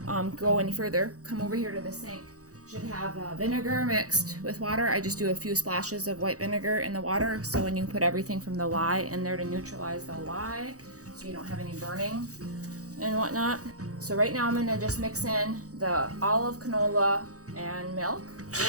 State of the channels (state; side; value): late; left; 0.66 ms